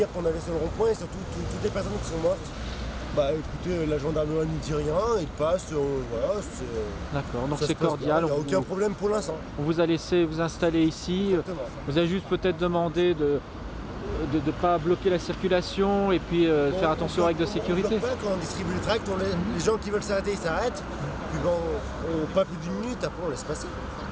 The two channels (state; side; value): identical; both; correlation 1.00